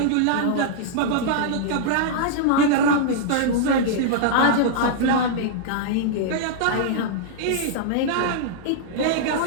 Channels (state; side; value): different; both; correlation -0.02